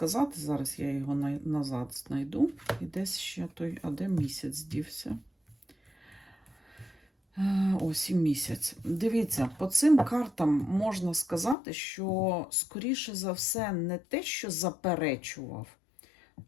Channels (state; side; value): drops out; right; at 11.6 s